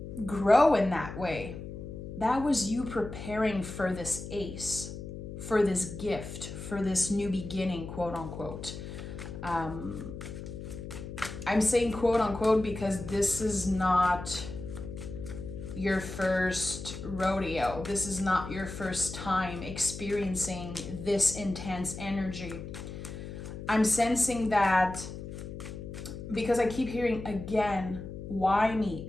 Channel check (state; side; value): noise; left; hum, 9 dB below the sound